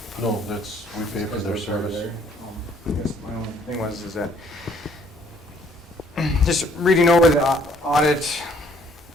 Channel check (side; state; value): both; normal; correlation 0.62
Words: No, we pay for their service. I guess my only thing is that just reading over the audit